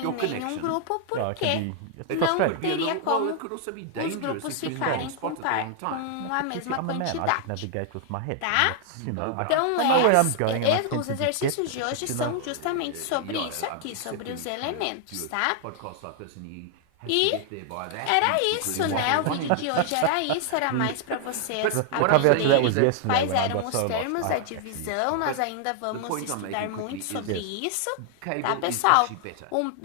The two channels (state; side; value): different; both; correlation 0.00